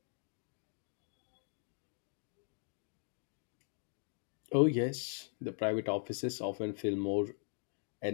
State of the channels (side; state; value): right; silent; 51 dB below the other